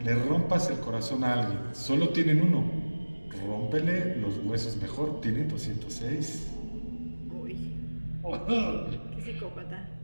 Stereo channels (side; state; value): both; inverted; correlation -1.00